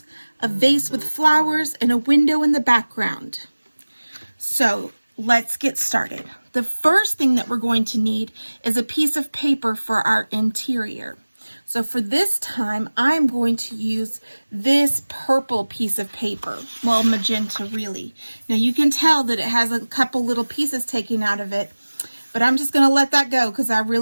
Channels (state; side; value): inverted; both; correlation -1.00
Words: a vase with flowers, and a window in the background. So let's get started. The first thing that we're going to need is a piece of paper for our interior. So for this time, I'm going to use this purple piece of paper. Well, magenta really. Now you can tell that it has a couple little pieces taken out of it, but I'm just going to let that go because I